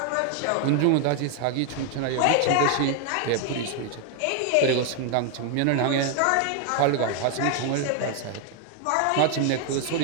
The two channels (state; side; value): different; both; correlation 0.00